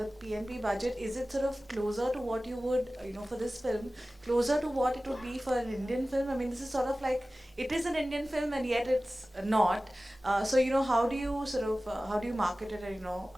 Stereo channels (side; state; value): both; normal; correlation 0.96